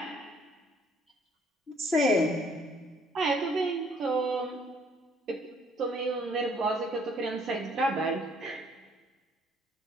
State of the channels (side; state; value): both; normal; correlation 0.62